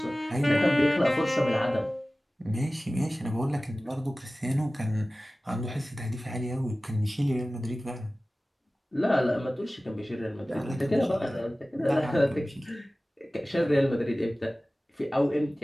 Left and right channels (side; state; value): both; normal; correlation 0.97